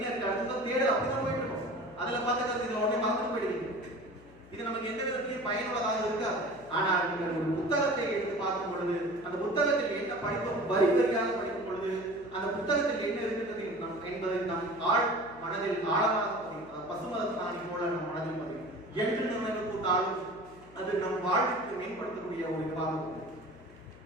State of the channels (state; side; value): noise; left; hum, 22 dB below the sound